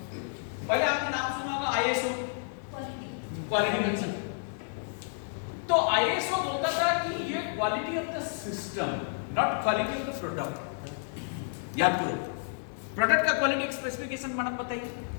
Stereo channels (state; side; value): silent; right; digital silence